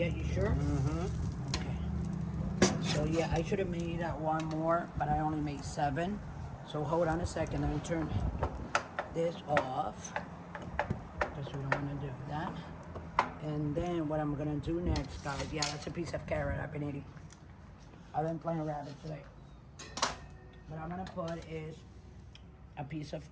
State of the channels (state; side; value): identical; both; correlation 1.00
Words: you sure? Mm-hmm. Okay. So yeah, I should have made one more, but I only made 7. So hold on a second. Let me turn this off, because we don't want to do that. And then what I'm gonna do next, guys, yeah, that's a piece of carrot I've been eating. I've been playing rabbit today. What I'm gonna put is a piece